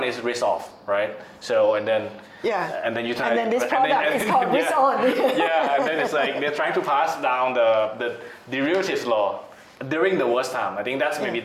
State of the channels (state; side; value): identical; both; correlation 1.00